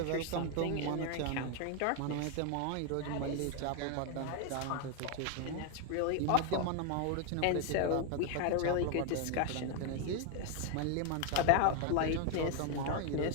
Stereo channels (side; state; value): both; different; correlation 0.01